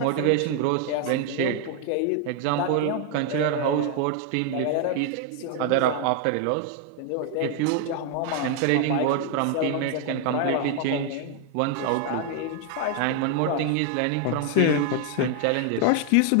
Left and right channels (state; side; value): different; both; correlation 0.00